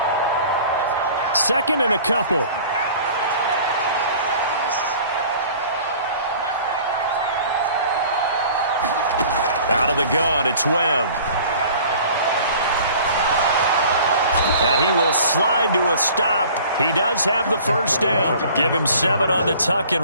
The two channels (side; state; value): both; inverted; correlation -0.47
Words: Second and a couple. Out of the gun, it's Webb. And he will slide to a stop. He does have the first down. Give him 7 on the tuck